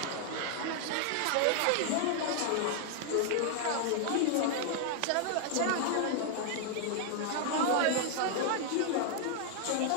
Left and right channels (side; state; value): both; different; correlation 0.00